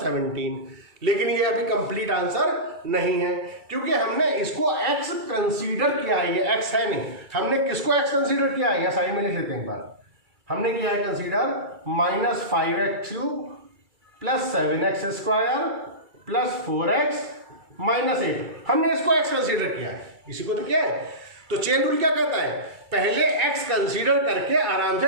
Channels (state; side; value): late; left; 2.3 ms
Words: लेकिन ये अभी कंप्लीट आंसर नहीं है क्योंकि हमने इसको x कंसीडर किया है, ये x है नहीं। हमने किसको x कंसीडर किया है, या साइड में लिख लेते हैं एक बार। हमने किया है consider minus 5x³ plus 7x² plus 4x minus 8। हमने इसको x कंसीडर किया है, इसी को तो किया है। तो चेन रूल क्या कहता है, पहले x कंसीडर करके आराम